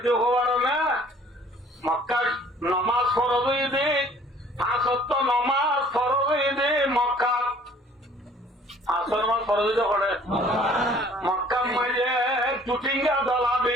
হবার না মক্কার নামাজ ফরজ হয়ে দে পাঁচত্ব নামাজ ফরজ হয়ে দে মক্কা আসর নামাজ ফরজ হইতে করে মক্কা মাঝে টুটিঙ্গা দলা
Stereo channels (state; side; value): normal; both; correlation 0.54